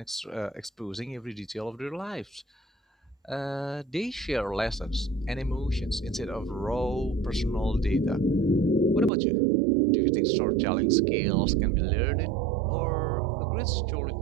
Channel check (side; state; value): left; drops out; at 9.1 s